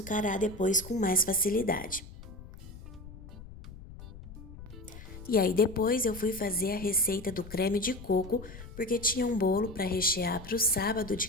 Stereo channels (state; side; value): noise; left; rumble, 15 dB below the sound